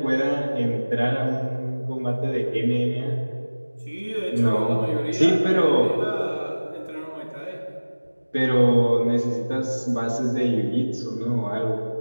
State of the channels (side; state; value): both; inverted; correlation -1.00